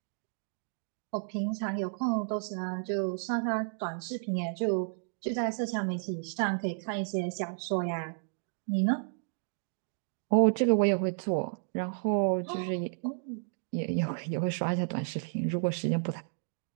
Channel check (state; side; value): silent; left; digital silence